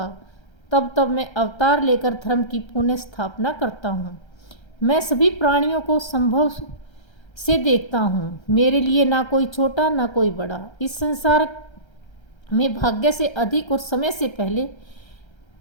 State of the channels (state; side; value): late; right; 1.3 ms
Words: तब तब मैं अवतार लेकर धर्म की पुनः स्थापना करता हूँ। मैं सभी प्राणियों को संभव से देखता हूँ। मेरे लिए ना कोई छोटा ना कोई बड़ा। इस संसार में भाग्य से अधिक और समय से पहले